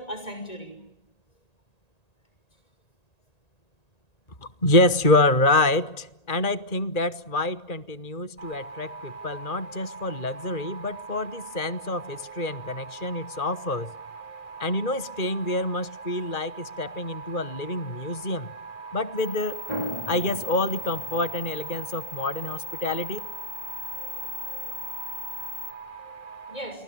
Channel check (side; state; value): right; late; 1.9 ms